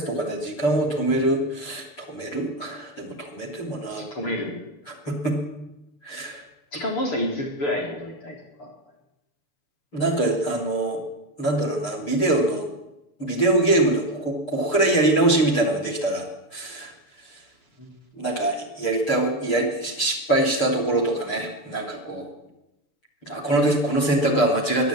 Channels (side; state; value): right; late; 6.7 ms